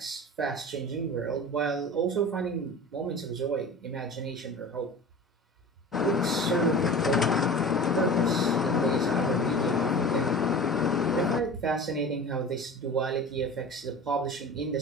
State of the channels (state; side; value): normal; both; correlation 0.36